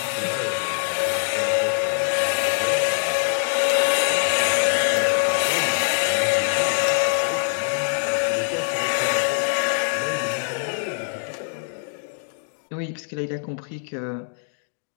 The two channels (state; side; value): silent; right; digital silence